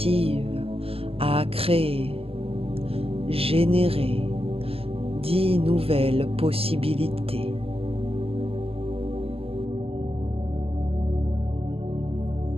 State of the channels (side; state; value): left; late; 0.28 ms